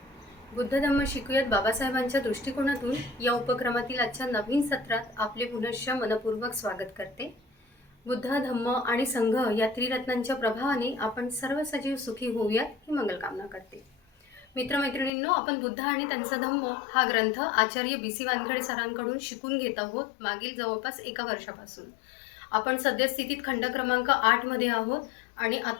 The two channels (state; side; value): drops out; right; at 15.1 s